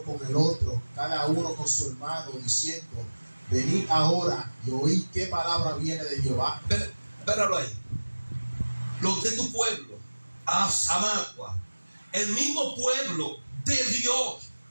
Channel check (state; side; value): inverted; both; correlation -1.00